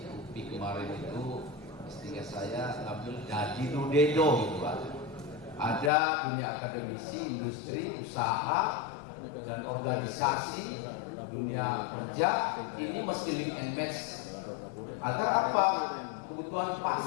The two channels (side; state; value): right; drops out; at 5.9 s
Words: UPI kemarin itu istilah saya ngambil jadi dudedo gitu Pak. Ada dunia akademisi, industri, usaha, dan organisasi, dunia kerja, ini mesti link and match. Agar apa? Kebutuhan